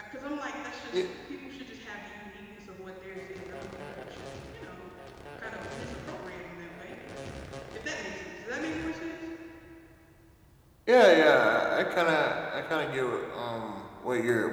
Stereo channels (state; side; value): identical; both; correlation 1.00